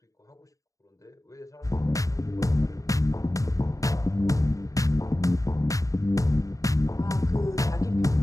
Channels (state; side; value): late; right; 0.16 ms